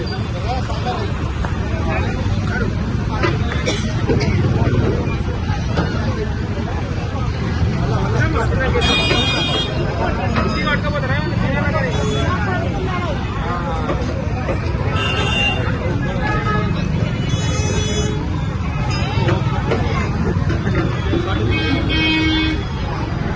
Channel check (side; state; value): both; identical; correlation 1.00